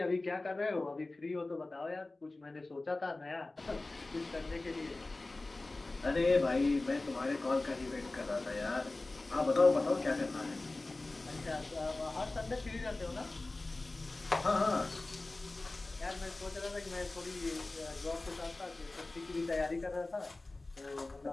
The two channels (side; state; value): right; quieter; 3.1 dB